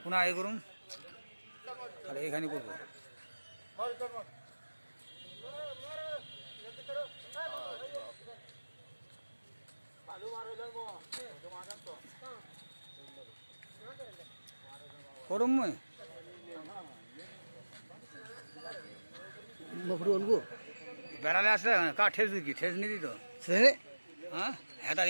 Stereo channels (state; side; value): inverted; both; correlation -1.00